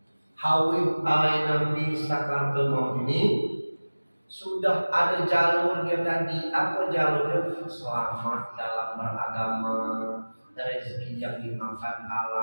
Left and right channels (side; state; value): both; inverted; correlation -1.00